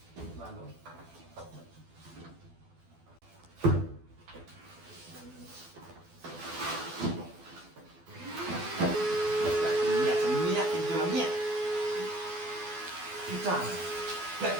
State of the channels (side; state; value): left; late; 12 ms